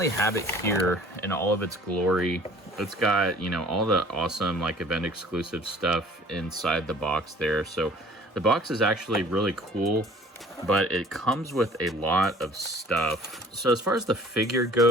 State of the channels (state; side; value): normal; both; correlation 0.51